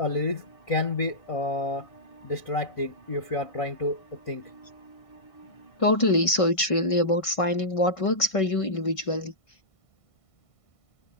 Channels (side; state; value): right; late; 1.5 ms